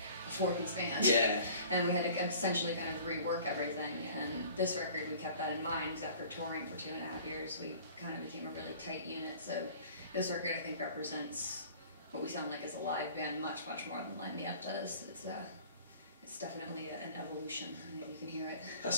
4-piece band? Yeah. And we had to essentially kind of rework everything, and this record, we kept that in mind, because after touring for 2.5 years, we kind of became a really tight unit, so this record, I think, represents what we sound like as a live band much, much more than Light Me Up does. It's definitely an evolution. I mean, you can hear it.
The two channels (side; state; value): both; inverted; correlation -0.48